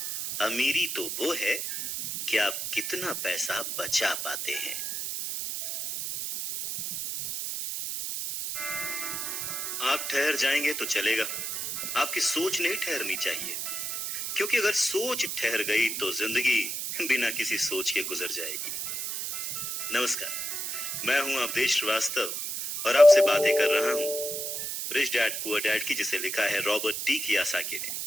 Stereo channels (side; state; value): right; noise; hiss, 3 dB below the sound